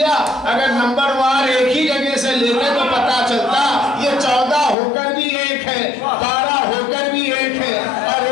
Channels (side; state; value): right; drops out; at 4.8 s